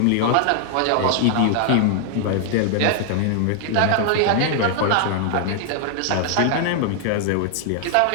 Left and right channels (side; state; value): both; different; correlation 0.00